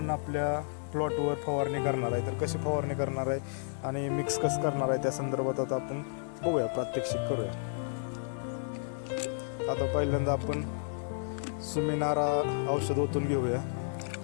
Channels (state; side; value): silent; right; 57 dB below the other